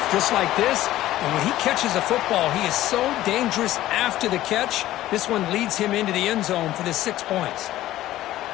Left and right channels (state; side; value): quieter; right; 14.6 dB